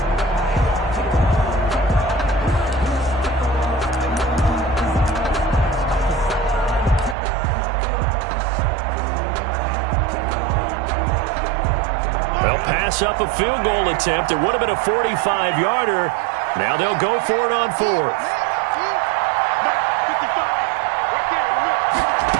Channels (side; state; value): left; drops out; at 7.2 s